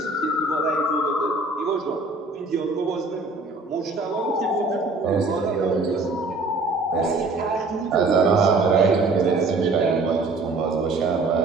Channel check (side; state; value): left; quieter; 3.4 dB